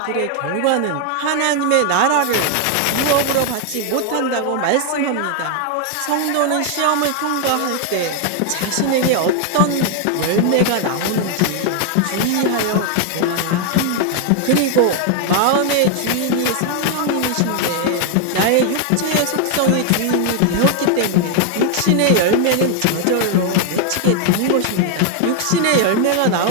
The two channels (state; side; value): different; both; correlation 0.00